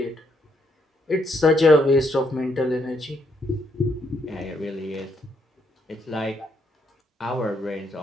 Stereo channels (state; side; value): normal; both; correlation 0.74